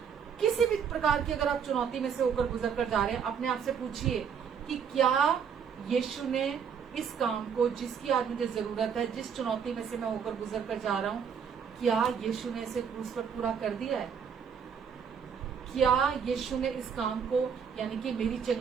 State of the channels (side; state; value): left; quieter; 7.1 dB